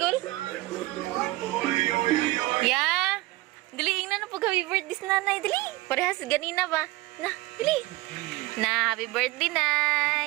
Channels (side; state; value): left; quieter; 19.5 dB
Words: Yeah. Dili na pag happy birthday sa nanay. Dili. Parehas ganina ba? Na, dili. Na, happy birthday,